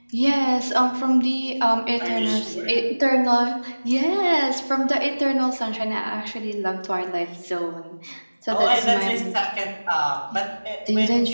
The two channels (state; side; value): inverted; both; correlation -1.00